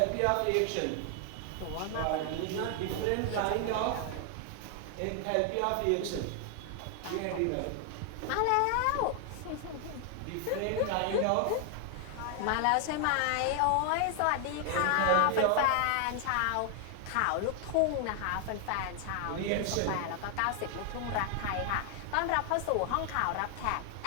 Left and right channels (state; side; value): different; both; correlation 0.00